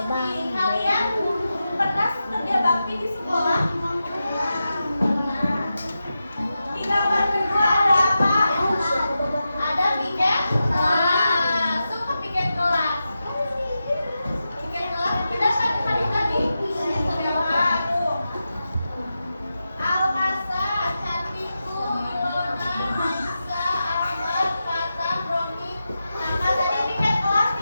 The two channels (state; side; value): inverted; both; correlation -0.90